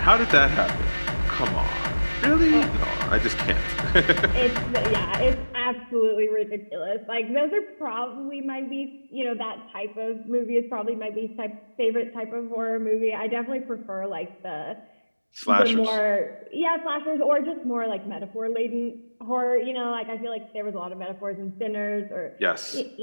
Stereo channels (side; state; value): both; inverted; correlation -1.00